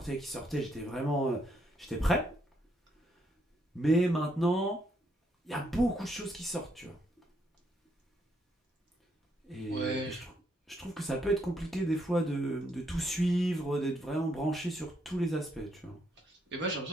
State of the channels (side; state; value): both; normal; correlation 0.75